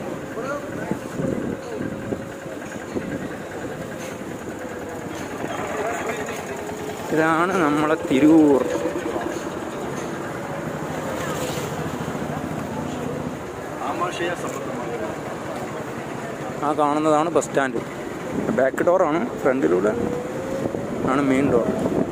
ഇതാണ് നമ്മളെ തിരൂർ. ആ കാണുന്നതാണ് ബസ് സ്റ്റാൻഡ്. ബാക്ക് ഡോറാണ്, ഫ്രണ്ടിലൂടെ ആണ് മെയിൻ ഡോർ.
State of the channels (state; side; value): identical; both; correlation 1.00